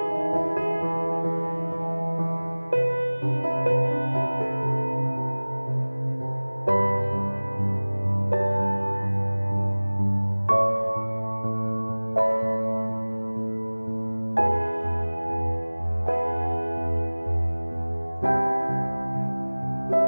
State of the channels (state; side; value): inverted; both; correlation -1.00